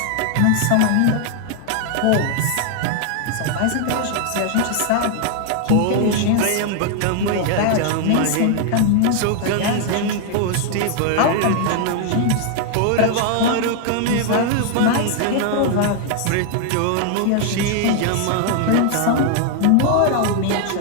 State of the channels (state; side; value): different; both; correlation 0.00